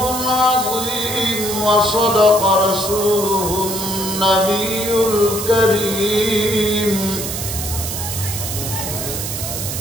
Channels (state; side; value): noise; right; hiss, 5 dB below the sound